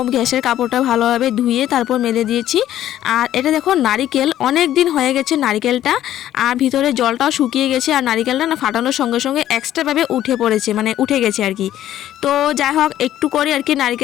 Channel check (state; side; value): quieter; right; 12.4 dB